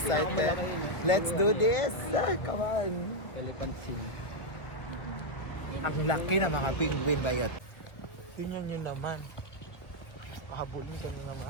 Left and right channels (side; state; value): right; late; 1.2 ms